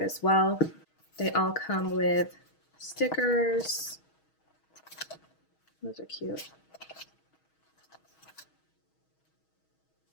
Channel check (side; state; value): right; late; 6.3 ms